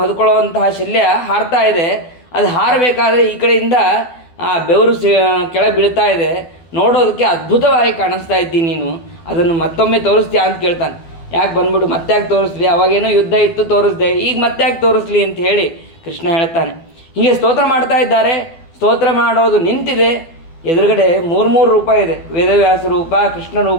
ಹೊದ್ಕೊಳ್ಳುವಂತಹ ಶಲ್ಯ ಹಾರ್ತಾ ಇದೆ. ಅದು ಹಾರಬೇಕಾದ್ರೆ ಈ ಕಡೆಯಿಂದ ಬೆವರು ಕೆಳಗೆ ಬೀಳ್ತಾ ಇದೆ, ನೋಡೋದಕ್ಕೆ ಅದ್ಭುತವಾಗಿ ಕಾಣಿಸ್ತಾ ಇದ್ದೀನಿ. ನೀನು ಅದನ್ನು ಮತ್ತೊಮ್ಮೆ ತೋರಿಸ್ತೀಯಾ ಅಂತ ಕೇಳ್ತಾನೆ. ಯಾಕೆ ಬಂದ್ಬಿಡು ಮತ್ತೆ ಯಾಕೆ ತೋರಿಸ್ಲಿ, ಅವಾಗೇನೋ ಯುದ್ಧ ಇತ್ತು ತೋರಿಸ್ದೆ, ಈಗ ಮತ್ತೆ ಯಾಕೆ ತೋರಿಸ್ಲಿ ಅಂತ ಹೇಳಿ ಕೃಷ್ಣ ಹೇಳ್ತಾನೆ. ಹೀಗೆ ಸ್ತೋತ್ರ ಮಾಡ್ತಾ ಇದ್ದಾರೆ. ಸ್ತೋತ್ರ ಮಾಡೋದು ನಿಂತಿದೆ. ಎದುರುಗಡೆ ಮೂರು ರೂಪ ಇದೆ, ವೇದವ್ಯಾಸ ರೂಪ, ಕೃಷ್ಣ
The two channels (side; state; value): right; late; 12 ms